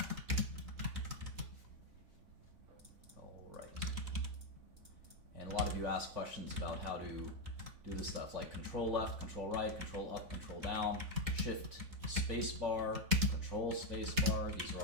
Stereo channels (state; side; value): late; left; 3.5 ms